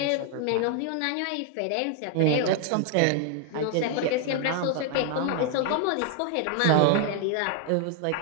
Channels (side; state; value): both; different; correlation 0.00